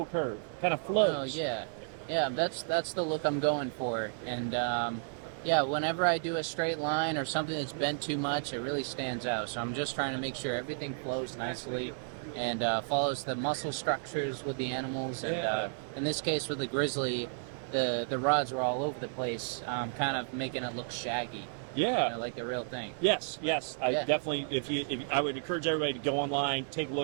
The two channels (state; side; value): silent; left; 56 dB below the other